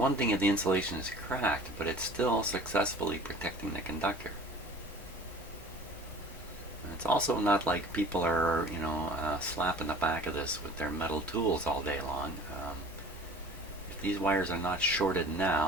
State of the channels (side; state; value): both; normal; correlation 0.44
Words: thing if the insulation is cracked, but it's still successfully protecting the conductor. And it's also not like people are, slapping the back of this with their metal tools all day long. If these wires are not shorted